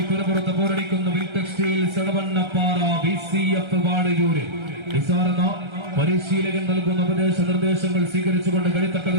പുറപ്പുറത്ത് പോരടിക്കുന്ന വിൽ ടെക്സ്റ്റൈൽസ് എടവണ്ണപ്പാറ BCF വാടയൂര്. നിസാറെന്ന പരിശീലകൻ നൽകുന്ന ഉപദേശ നിർദ്ദേശങ്ങൾ സ്വീകരിച്ചുകൊണ്ട്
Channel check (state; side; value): late; left; 1.3 ms